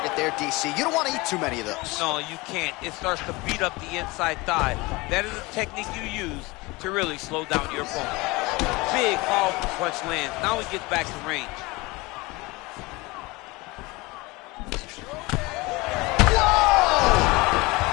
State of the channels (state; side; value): quieter; right; 23.4 dB